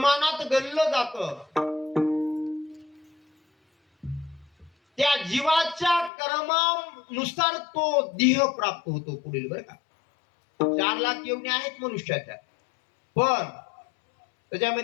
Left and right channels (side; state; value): right; drops out; at 6.1 s